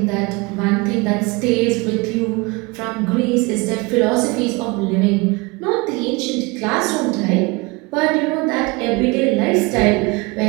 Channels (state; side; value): quieter; left; 25.6 dB